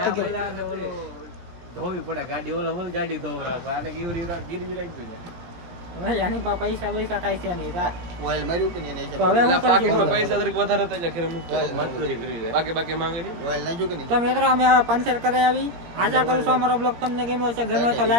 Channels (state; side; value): late; left; 17 ms